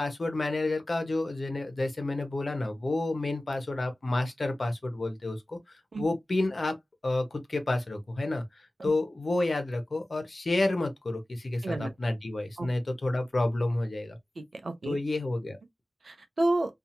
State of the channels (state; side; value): normal; both; correlation 0.96